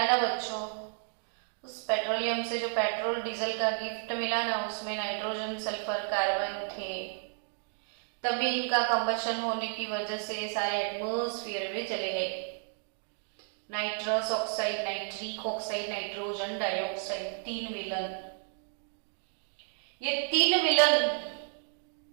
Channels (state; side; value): silent; left; 56 dB below the other